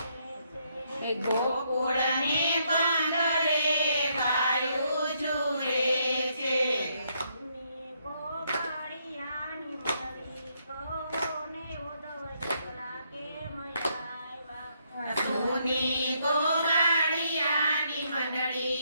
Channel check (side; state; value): both; inverted; correlation -0.74